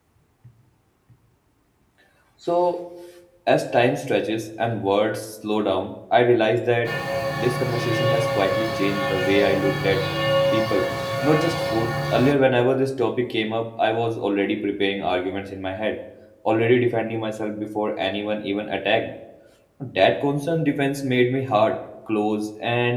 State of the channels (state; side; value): identical; both; correlation 1.00